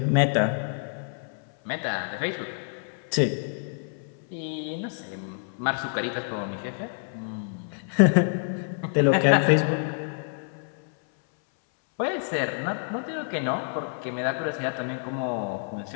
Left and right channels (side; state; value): right; silent; 60 dB below the other